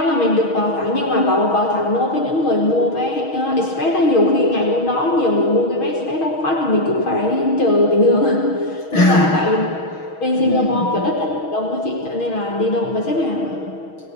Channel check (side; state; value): right; late; 6.3 ms